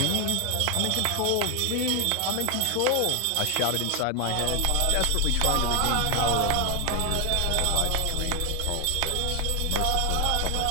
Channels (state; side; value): different; both; correlation 0.00